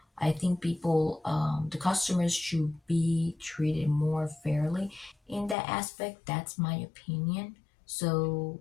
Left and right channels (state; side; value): drops out; right; at 5.6 s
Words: I think the customers should be treated more fairly in that aspect. That's my opinion. So